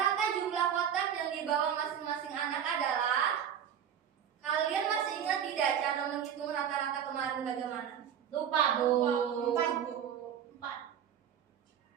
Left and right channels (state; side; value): quieter; left; 8.8 dB